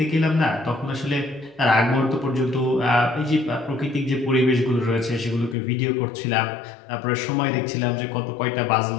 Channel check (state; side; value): drops out; right; at 5.6 s